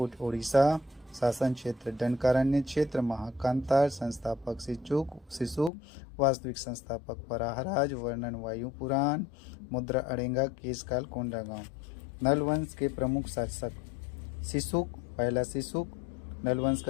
उड़ीसा। शासन क्षेत्र दंडकारण्य क्षेत्र, महाकांतार। संस्थापक शिशुक, वास्तविक संस्थापक वराहराज। वर्णन वायु पुराण। मुद्रा अड़ेंगा, केशकाल कोंडागांव। नलवंश के प्रमुख शासक शिशुक, पहला शिशुक नलवंश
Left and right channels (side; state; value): right; drops out; at 5.7 s